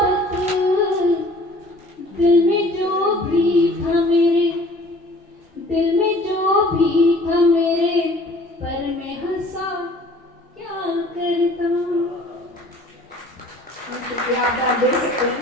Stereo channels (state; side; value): normal; both; correlation 0.51